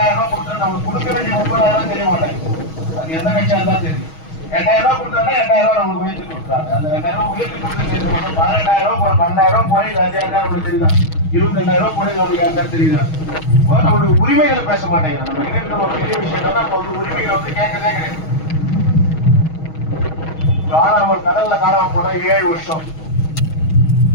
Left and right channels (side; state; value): right; late; 6.3 ms